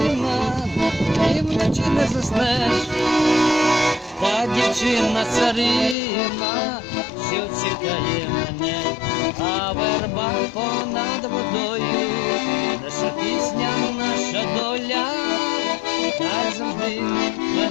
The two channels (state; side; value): drops out; right; at 6.0 s